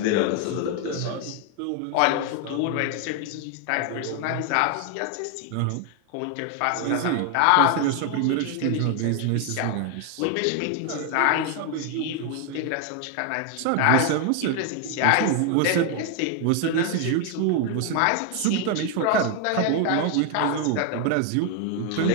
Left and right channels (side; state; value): both; different; correlation 0.01